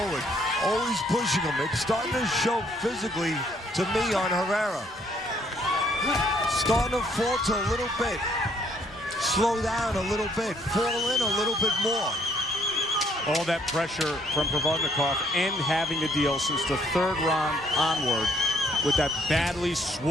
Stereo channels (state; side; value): normal; both; correlation 0.66